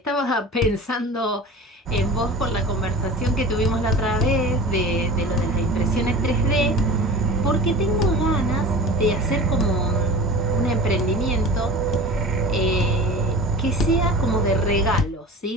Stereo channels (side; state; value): both; normal; correlation 0.36